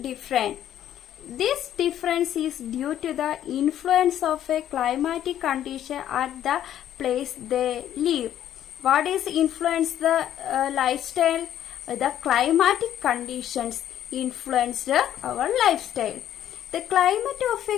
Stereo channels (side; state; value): right; quieter; 11.2 dB